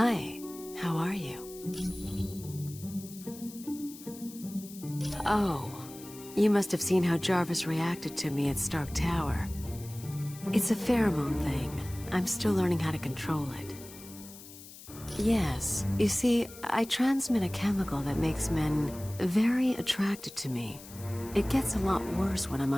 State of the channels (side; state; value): left; noise; hiss, 17 dB below the sound